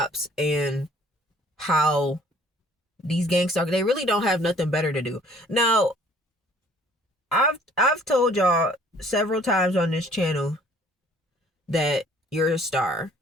and how these gang stalkers, they really don't have nothing better to do. Now, I've told y'all several times on this channel that you're a star.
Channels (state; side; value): normal; both; correlation 0.56